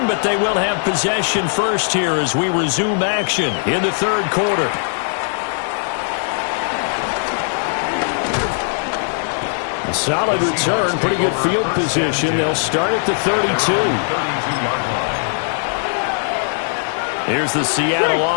but they will have possession first here as we resume action in the third quarter. Solid return, pretty good field position. They'll start at the 32. Here's the Seattle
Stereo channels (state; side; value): silent; right; 59 dB below the other